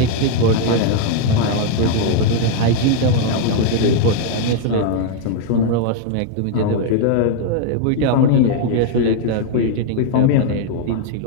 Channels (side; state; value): both; different; correlation 0.00